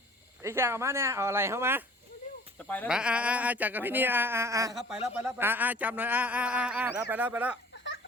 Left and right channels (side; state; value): both; normal; correlation 0.50